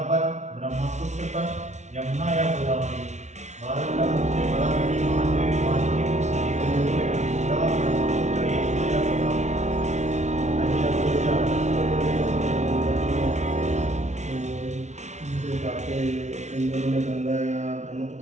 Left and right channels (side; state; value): left; late; 0.33 ms